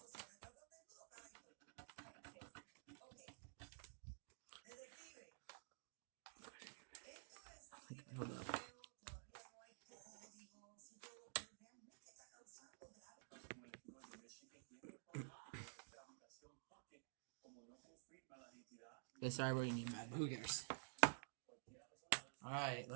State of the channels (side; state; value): left; silent; digital silence